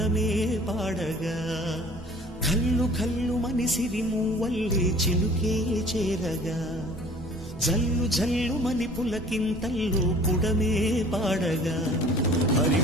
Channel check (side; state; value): both; normal; correlation 0.49